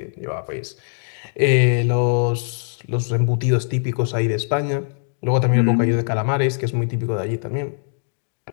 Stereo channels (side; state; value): right; silent; digital silence